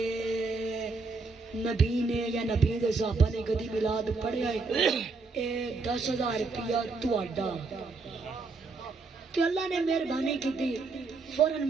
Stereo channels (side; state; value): left; quieter; 4.0 dB